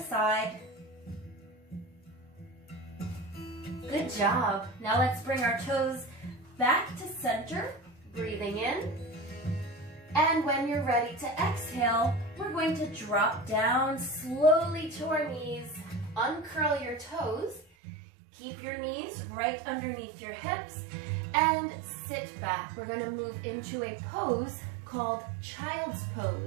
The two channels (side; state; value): left; drops out; at 17.7 s